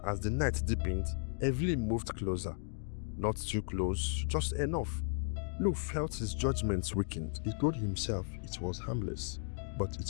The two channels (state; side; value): silent; right; 54 dB below the other